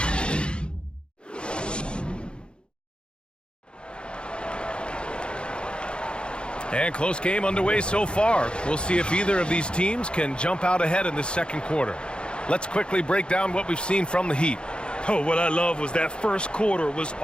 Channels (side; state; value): right; late; 0.054 ms